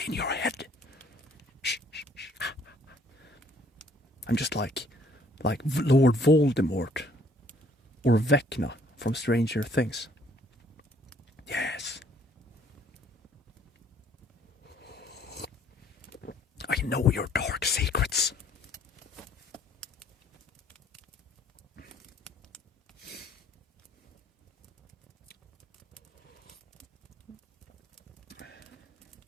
in your head. Shh, shh, shh. I'm just like Lord Voldemort or Vecna from Stranger Things. Yes. I know your dark secrets.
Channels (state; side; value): normal; both; correlation 0.62